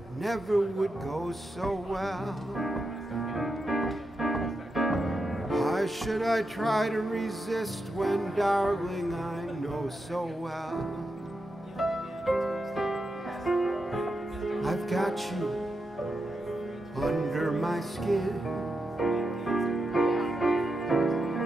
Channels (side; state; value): both; normal; correlation 0.87